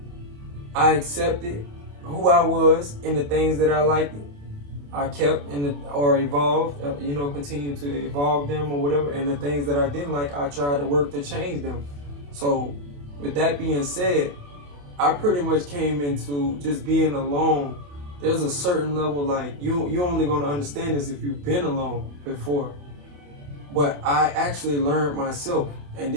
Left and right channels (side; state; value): left; late; 28 ms